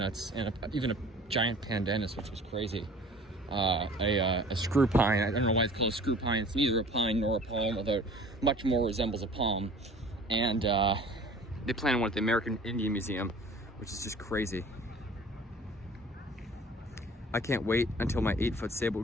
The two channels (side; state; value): both; normal; correlation 0.46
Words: and even a giant pandanus, which was crazy. A screw pine. I don't know why it's called a screw pine. It's neither a pine nor a palm, although it much more resembles a palm. And they planted one at the American Indian Museum, which is just crazy. I can't wait until my 8-foot